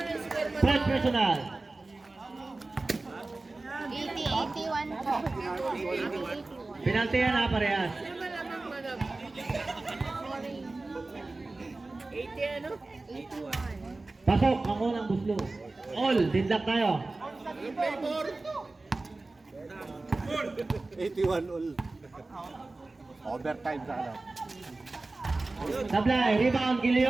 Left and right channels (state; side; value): quieter; left; 3.2 dB